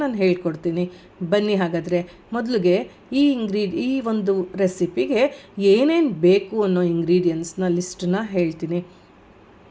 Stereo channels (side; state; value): both; identical; correlation 1.00